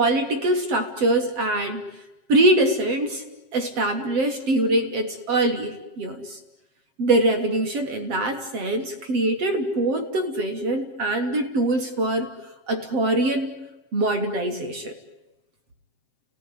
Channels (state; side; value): late; left; 7.6 ms